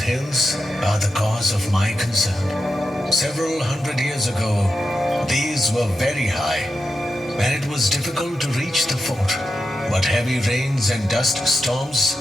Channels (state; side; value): normal; both; correlation 0.89